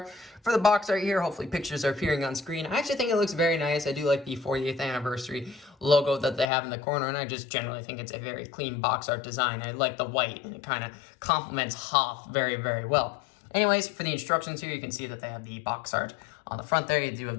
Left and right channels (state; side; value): drops out; right; at 6.5 s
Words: For the box art here, hopefully pictures are appearing on screen. I actually think it looks very nice. I do like the 40th anniversary logo that they have in the corner, and I just generally think it's a very clean box art design. I like the white, and it kind of complements Hoth very, very well. Anyways, for the instructions here, you can see that they have the box art on the front there. You do